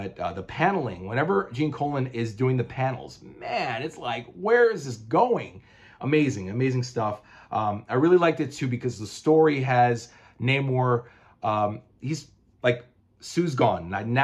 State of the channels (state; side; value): identical; both; correlation 1.00